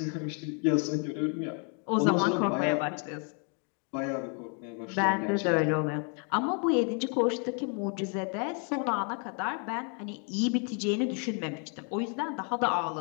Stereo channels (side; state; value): right; quieter; 39.5 dB